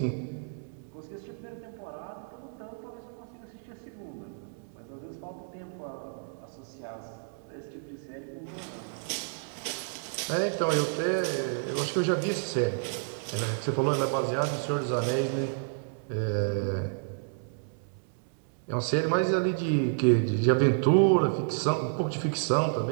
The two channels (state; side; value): silent; left; 58 dB below the other